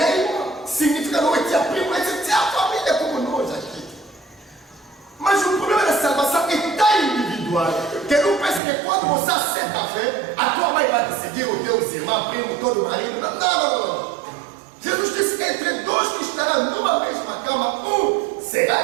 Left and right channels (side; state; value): left; drops out; at 8.6 s